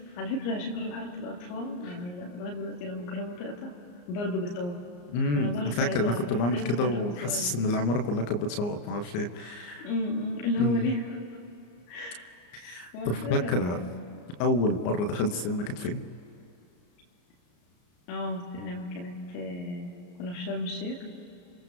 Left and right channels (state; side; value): late; right; 34 ms